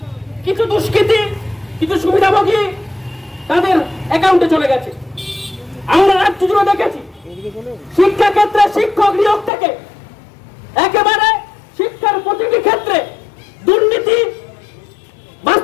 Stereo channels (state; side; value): drops out; right; at 9.5 s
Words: কিছু দুষ্কৃতী, কিছু সুবিধাভোগী তাদের অ্যাকাউন্টে চলে গেছে। আমরা রাজ্য জুড়ে দেখেছি শিক্ষা ক্ষেত্রে শিক্ষক নিয়োগ থেকে একেবারে শিক্ষার প্রতিটি ক্ষেত্রে দুর্নীতি